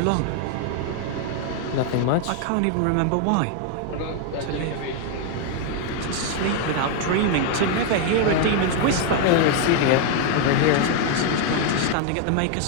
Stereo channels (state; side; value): different; both; correlation 0.01